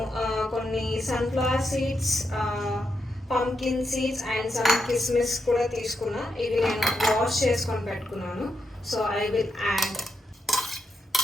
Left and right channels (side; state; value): both; normal; correlation 0.83